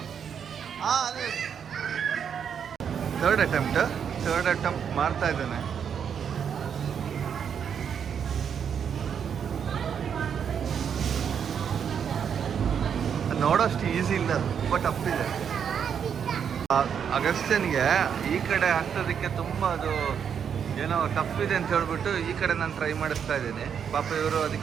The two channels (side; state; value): left; quieter; 7.7 dB